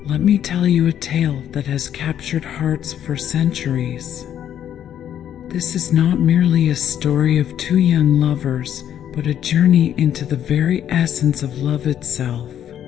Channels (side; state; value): right; quieter; 10.1 dB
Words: let me tell you a tale that has captured hearts for centuries. This is not merely a story of two young lovers, but a journey into the very essence of love itself.